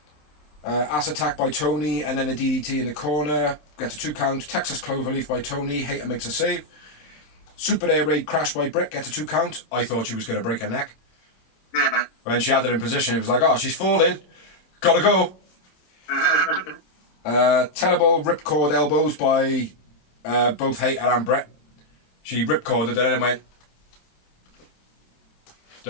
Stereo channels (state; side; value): late; right; 26 ms